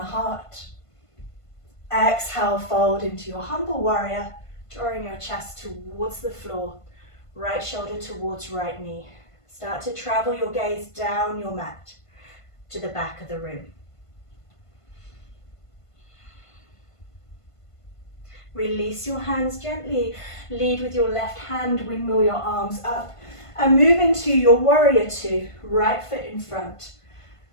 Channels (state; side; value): late; right; 1.5 ms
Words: Exhale, fold into your humble warrior, drawing your chest towards the floor. Right shoulder towards right knee. Start to travel your gaze down your mat to the back of the room. Release your hands gently. Lead with your left hand, windmill your arms up. And move into your warrior two. Right foot in front.